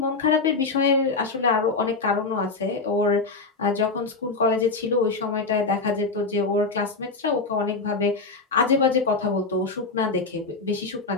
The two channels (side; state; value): right; quieter; 4.0 dB